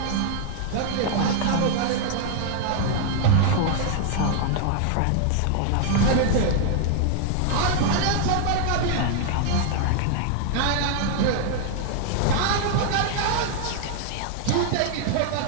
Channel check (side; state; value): both; different; correlation 0.00